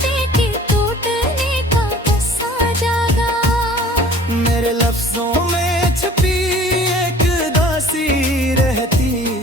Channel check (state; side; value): normal; both; correlation 0.49